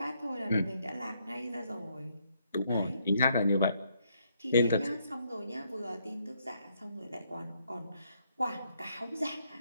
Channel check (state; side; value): inverted; both; correlation -0.74